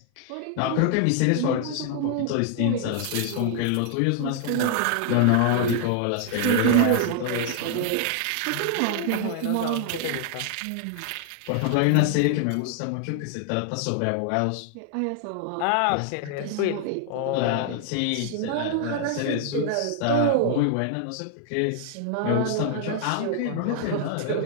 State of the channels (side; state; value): both; different; correlation 0.00